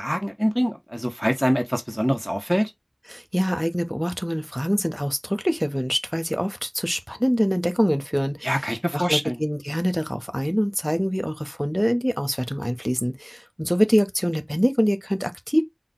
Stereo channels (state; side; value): identical; both; correlation 1.00